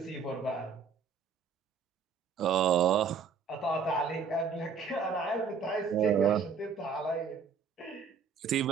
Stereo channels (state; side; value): quieter; left; 5.7 dB